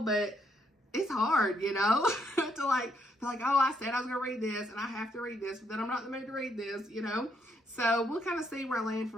but it's hard, you know, to like, oh, I said I was going to read this and I have to read this, but then I'm not in the mood to read this, you know. So we'll kind of see where I land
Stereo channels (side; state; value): both; normal; correlation 0.74